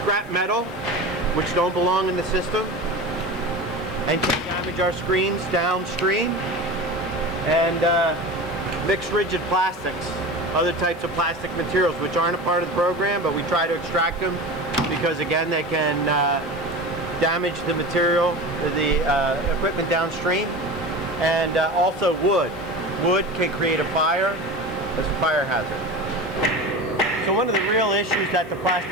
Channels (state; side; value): noise; left; hiss, 28 dB below the sound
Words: metal, which don't belong in the system, and can damage our screens downstream, and mixed rigid plastics, other types of plastic materials which aren't a part of the program, but we try to extract them because again they can damage the material, the equipment downstream, and also wood. Wood can create a fire as a fire hazard. So one of the real issues that the